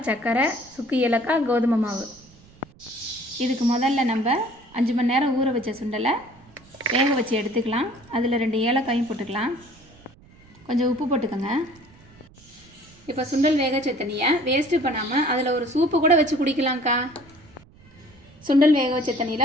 சர்க்கரை, சுக்கு ஏலக்காய், கோதுமை மாவு. இதுக்கு முதல்ல நம்ம 5 மணி நேரம் ஊற வச்ச சுண்டலை வேக வச்சு எடுத்துக்கலாம். அதில் 2 ஏலக்காயும் போட்டுக்கலாம். கொஞ்சம் உப்பு போட்டுக்கோங்க. இப்போ சுண்டல் வேக வச்ச தண்ணியை வேஸ்ட்டு பண்ணாமல் அதில் ஒரு சூப்பு கூட வச்சு குடிக்கலாம்க்கா. சுண்டல் வேக வச்ச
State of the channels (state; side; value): noise; right; rumble, 26 dB below the sound